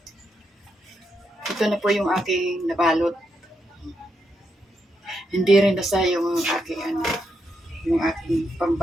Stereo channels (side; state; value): both; normal; correlation 0.81